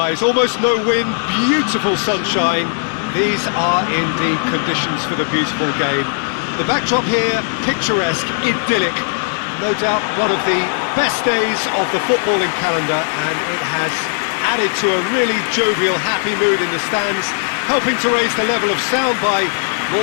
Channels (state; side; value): silent; right; digital silence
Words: almost no wind, beautiful sunshine. These are indeed conditions for the beautiful game. The backdrop here, picturesque, idyllic. No doubt one of the best days of the footballing calendar, and it has added to a really jovial, happy mood in the stands, helping to raise the level of sound by more